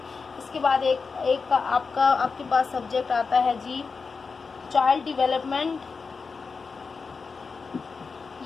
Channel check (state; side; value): quieter; right; 4.8 dB